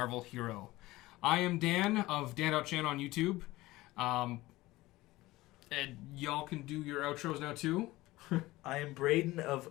hero? I am Dan of Dan.Chan on YouTube. And y'all can do your outros now too. I am Braydon of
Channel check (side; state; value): right; quieter; 18.7 dB